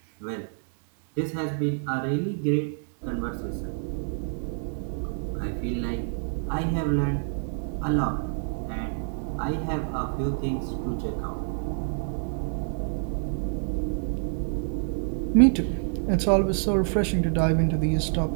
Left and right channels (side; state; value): left; silent; 60 dB below the other